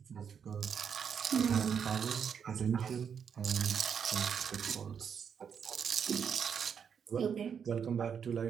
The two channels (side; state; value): left; quieter; 7.3 dB